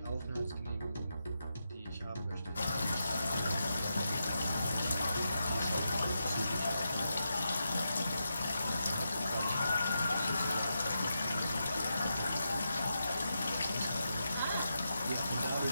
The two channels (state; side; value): inverted; both; correlation -0.86